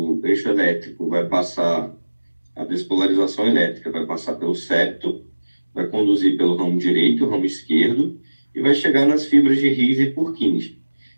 eixo elétrico vai passar, a despolarização elétrica vai passar pelo septo, vai conduzir pelo ramo direito e o ramo esquerdo, e vai chegar nas fibras de His e Purkinje.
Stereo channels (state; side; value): inverted; both; correlation -1.00